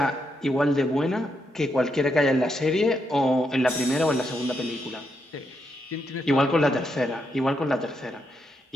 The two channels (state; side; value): normal; both; correlation 0.81